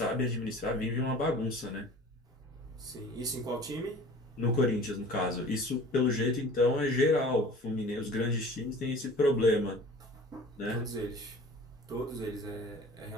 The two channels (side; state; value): both; normal; correlation 0.44